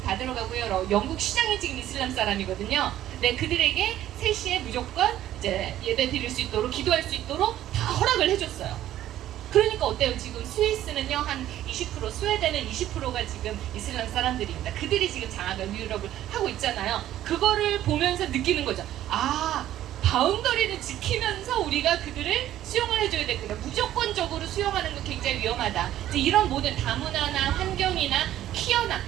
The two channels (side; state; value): left; quieter; 12.8 dB